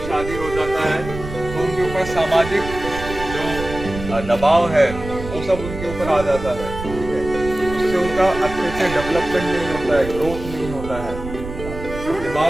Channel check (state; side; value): noise; right; rumble, 10 dB below the sound